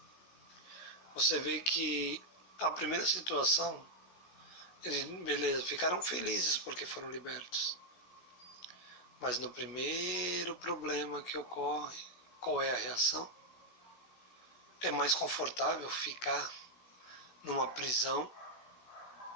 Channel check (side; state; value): right; late; 16 ms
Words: Você vê que a primeira situação, beleza, ficaram felizes porque foram libertos. Mas no primeiro problema que ocorre, qual é a reação? É mais confortável ficar numa prisão,